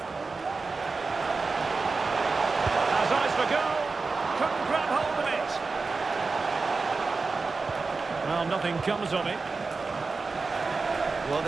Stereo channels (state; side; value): quieter; left; 4.1 dB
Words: Has eyes for goal. Couldn't grab hold of it. Well, nothing comes of it. Well,